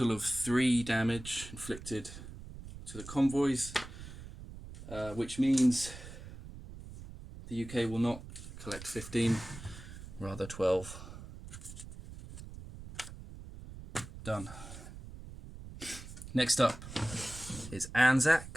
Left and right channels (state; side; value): noise; right; rumble, 13 dB below the sound